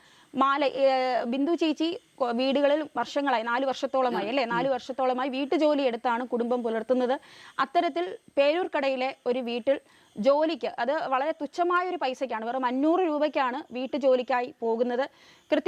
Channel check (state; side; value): identical; both; correlation 1.00